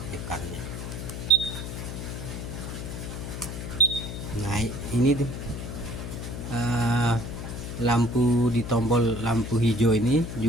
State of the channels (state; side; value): noise; left; hum, 7 dB below the sound